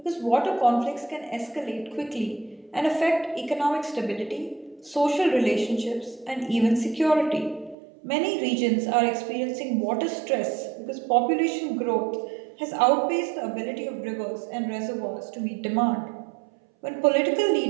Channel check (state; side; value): drops out; left; at 7.8 s